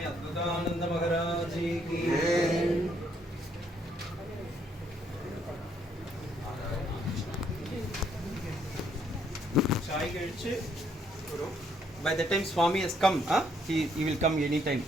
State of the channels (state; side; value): normal; both; correlation 0.70